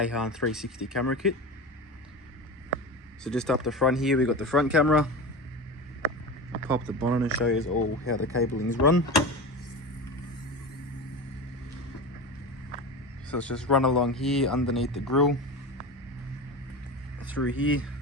360 camera kit. So just up the front here, we got the front camera. I'll pop the bonnet and show you all how the cabling's run. So it's just run along here underneath the grille, through here.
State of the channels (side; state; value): both; normal; correlation 0.27